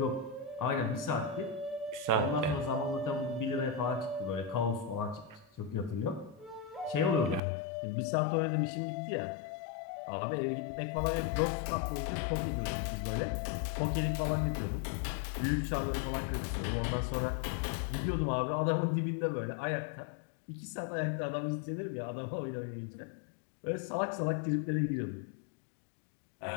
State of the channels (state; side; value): drops out; right; at 7.4 s